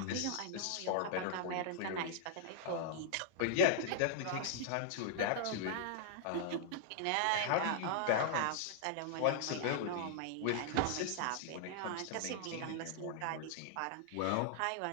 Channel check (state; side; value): different; both; correlation -0.01